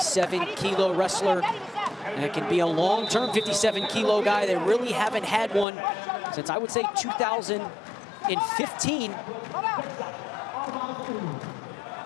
wrestler that can be a long-term 57-kilo guy. They really haven't had one since, I would say, 2015.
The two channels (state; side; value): drops out; right; at 5.7 s